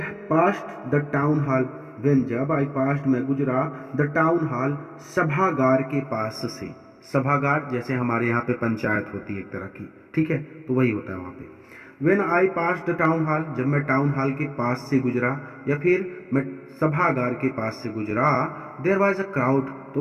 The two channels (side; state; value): both; identical; correlation 1.00